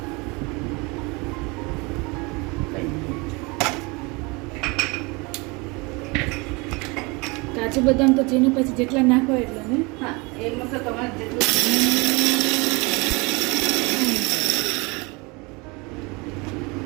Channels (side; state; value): left; quieter; 27.0 dB